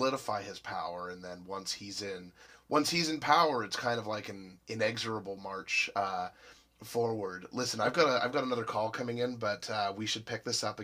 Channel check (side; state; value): both; identical; correlation 1.00